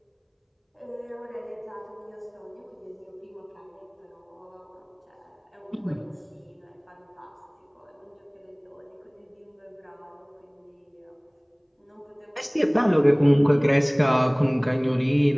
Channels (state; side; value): identical; both; correlation 1.00